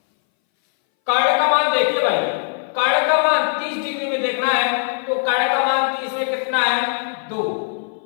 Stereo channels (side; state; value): right; silent; 61 dB below the other